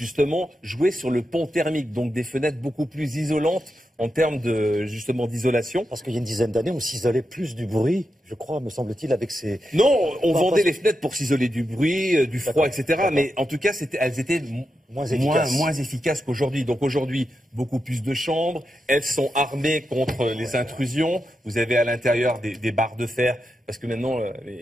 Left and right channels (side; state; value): both; normal; correlation 0.87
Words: jouer sur le pont thermique, donc des fenêtres beaucoup plus isolantes en termes justement d'isolation. Parce qu'il y a une dizaine d'années, on s'isolait plus du bruit, je crois, me semble-t-il, avec ces... Non, on vendait les fenêtres pour s'isoler du bruit, du froid, etc. Mais en tout cas, elles étaient moins efficaces qu'aujourd'hui. Donc aujourd'hui, beaucoup plus de chambres. Elles sont armées contre les intrusions. Vous avez à l'intérieur des barres de fer, parce que maintenant,